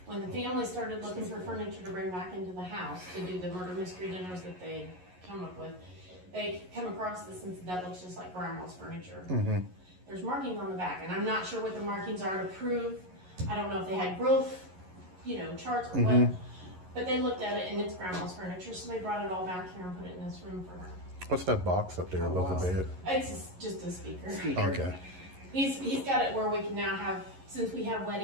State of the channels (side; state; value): left; late; 11 ms